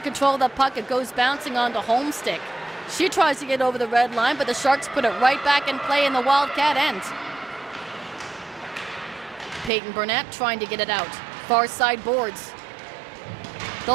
of the puck. It goes bouncing onto Homestick. She tries to get over the red line, but the Sharks put it right back in play in the Wildcat end. Peyton Burnett trying to get it out. Far side boards.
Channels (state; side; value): drops out; left; at 9.7 s